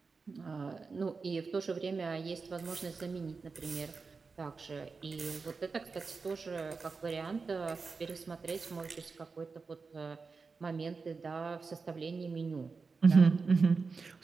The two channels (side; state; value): left; quieter; 4.6 dB